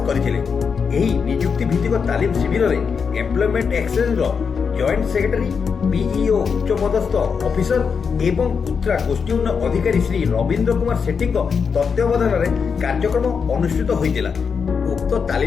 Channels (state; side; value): quieter; right; 6.0 dB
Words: କରିଥିଲେ। ଏହି ନିଯୁକ୍ତି ଭିତ୍ତିକ ତାଲିମ ଶିବିରରେ ଏମ୍ପ୍ଲୟମେଣ୍ଟ ଏକ୍ସଚେଞ୍ଜର ଜଏଣ୍ଟ ସେକ୍ରେଟାରୀ, ବିଇଓ ଉଚ୍ଚପଦସ୍ଥ ଅଫିସର ଏବଂ କୁତ୍ରା ଗୋଷ୍ଠୀ ଉନ୍ନୟନ ଅଧିକାରୀ ଶ୍ରୀ ରବୀନ୍ଦ୍ର କୁମାର ସେଠୀଙ୍କ ତତ୍ତ୍ୱାବଧାନରେ କାର୍ଯ୍ୟକ୍ରମ ଅନୁଷ୍ଠିତ ହୋଇଥିଲା। ଉକ୍ତ